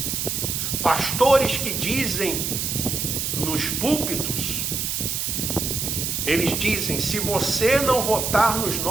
Pastores que dizem nos púlpitos, eles dizem: se você não votar nos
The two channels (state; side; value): noise; right; hiss, 1 dB below the sound